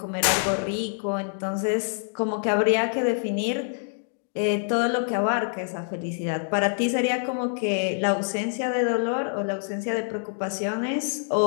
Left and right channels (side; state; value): right; silent; digital silence